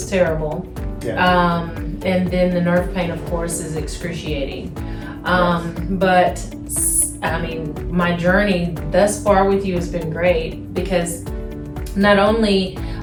terrible. Yeah. And then the nerve pain, of course, is excruciating. But I mean, my journey thus far with you has been great because not only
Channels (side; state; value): both; identical; correlation 1.00